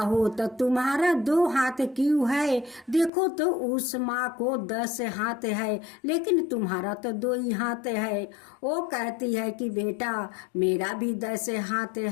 तो तुम्हारा 2 हाथ क्यों है, देखो तो उस माँ को 10 हाथ है लेकिन तुम्हारा तो 2 ही हाथ है। वो कहती है कि बेटा मेरा भी 10 हाथ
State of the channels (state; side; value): drops out; right; at 3.1 s